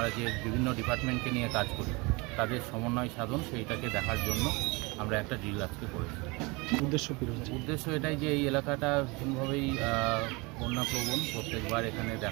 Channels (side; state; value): left; quieter; 26.4 dB